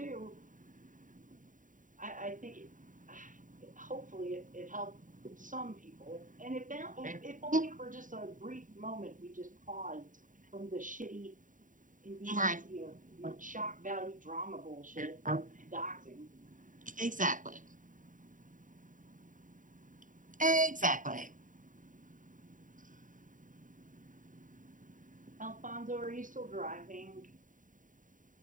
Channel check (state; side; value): late; left; 0.38 ms